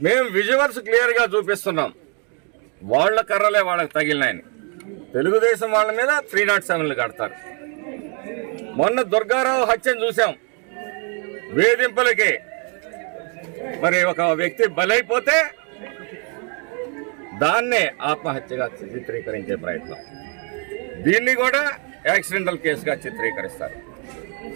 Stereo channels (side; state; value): left; quieter; 36.0 dB